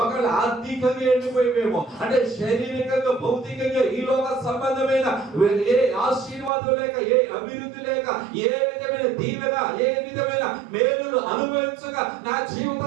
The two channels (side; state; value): left; drops out; at 6.5 s